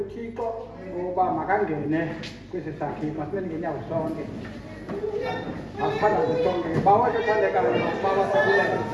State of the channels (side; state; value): both; identical; correlation 1.00